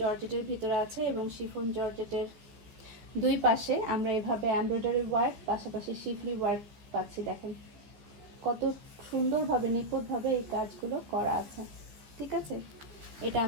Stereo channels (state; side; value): late; left; 14 ms